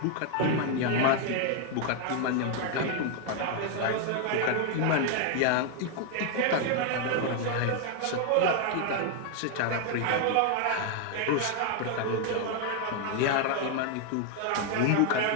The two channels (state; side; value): different; both; correlation 0.00